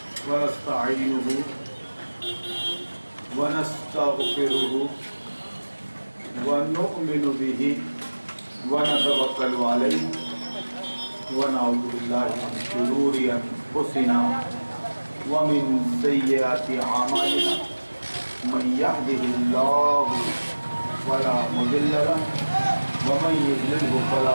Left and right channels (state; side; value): inverted; both; correlation -1.00